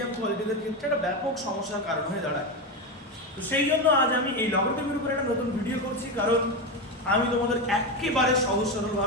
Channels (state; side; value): normal; both; correlation 0.15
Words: কোয়ালিটিদের ক্ষেত্রে একটা ব্যাপক সমস্যার কারণ হয়ে দাঁড়ায়। তো সেই জন্য আজ আমি এই লগারিদমের উপরে একটা নতুন ভিডিও করছি, কারণ আমি তোমাদের একেবারে সহজ